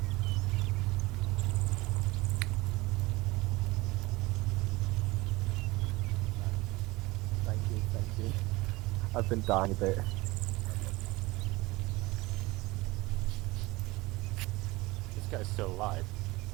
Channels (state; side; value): quieter; left; 21.3 dB